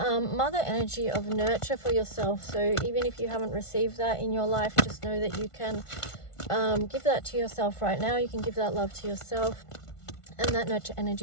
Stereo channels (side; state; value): right; late; 1.5 ms